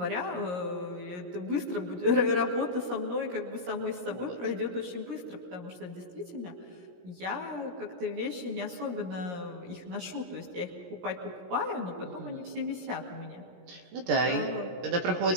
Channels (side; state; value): left; late; 17 ms